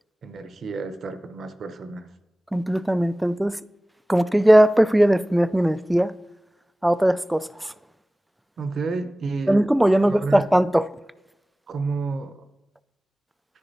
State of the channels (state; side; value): normal; both; correlation 0.98